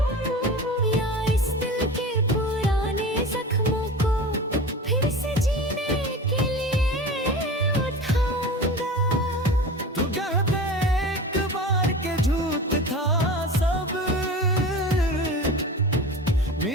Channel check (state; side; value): normal; both; correlation 0.33